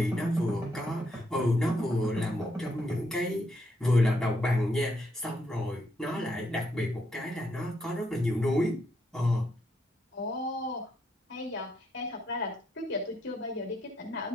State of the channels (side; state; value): both; normal; correlation 0.77